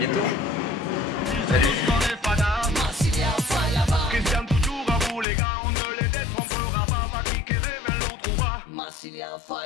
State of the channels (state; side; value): drops out; right; at 5.2 s